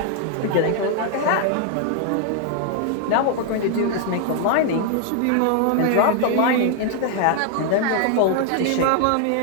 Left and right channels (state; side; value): different; both; correlation 0.00